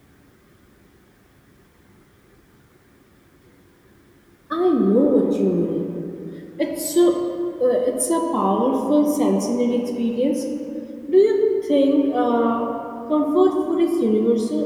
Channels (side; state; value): both; identical; correlation 1.00